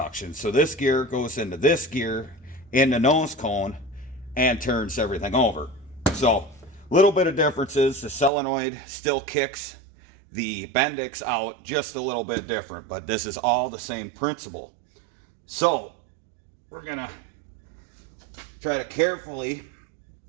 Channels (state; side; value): drops out; left; at 8.3 s